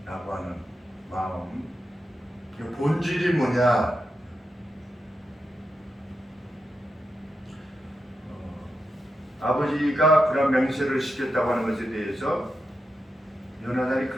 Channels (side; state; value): both; normal; correlation 0.87